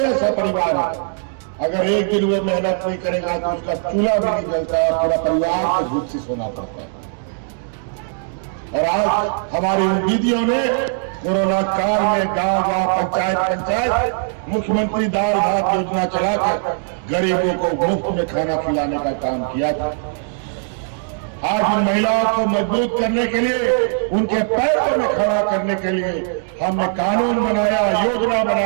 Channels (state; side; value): silent; left; digital silence